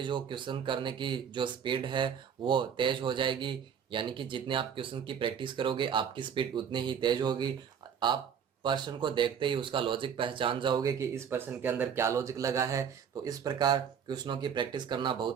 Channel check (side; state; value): left; quieter; 7.7 dB